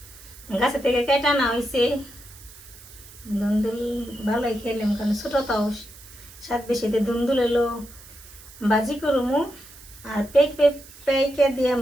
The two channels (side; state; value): right; noise; hiss, 20 dB below the sound